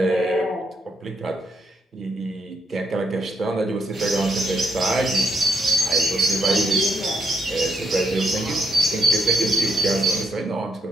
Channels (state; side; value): normal; both; correlation 0.76